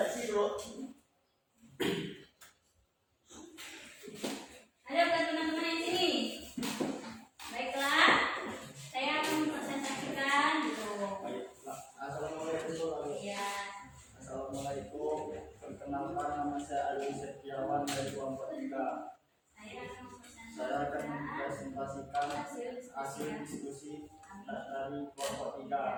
dulu. Ada bukan teman-teman yang sini? Baiklah, saya akan mempresentasikan gitu. Assalamualaikum. Iya. Assalamualaikum. Perkenalkan, nama saya Ali Setiawan dari kelompok 3. Saya akan mempresentasikan hasil diskusi dari kelompok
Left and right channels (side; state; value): both; identical; correlation 1.00